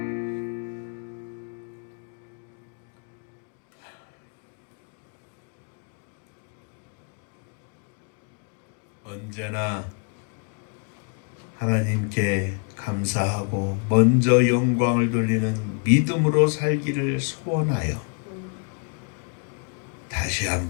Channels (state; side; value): quieter; right; 38.7 dB